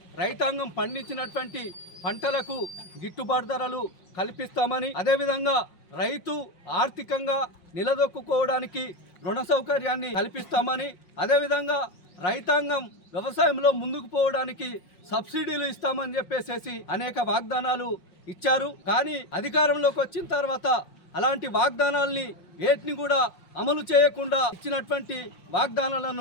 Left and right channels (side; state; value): right; late; 5.6 ms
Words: రైతాంగం పండించినటువంటి పంటలకు గిట్టుబాటు ధరలు కల్పిస్తామని, అదేవిధంగా రైతు ఆర్థికంగా నిలదొక్కుకోవడానికి రుణ సౌకర్యాన్ని కల్పిస్తామని, అదేవిధంగా రైతాంగం వ్యవసాయంలో ముందుకు పోవడానికి సబ్సిడీలు ఇస్తామని చెప్పేసి అనేక వాగ్దానాలు ఇచ్చారు. కానీ అధికారంలోకి వచ్చిన తర్వాత అలాంటి వాగ్దానాల్ని వేటిని కూడా అమలు చేయకుండా ఇచ్చినటువంటి